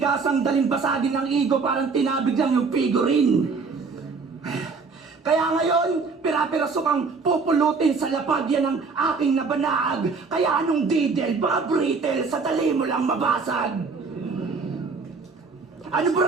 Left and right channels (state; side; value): quieter; left; 4.6 dB